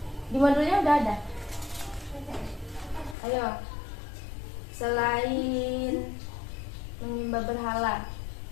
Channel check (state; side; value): drops out; right; at 3.2 s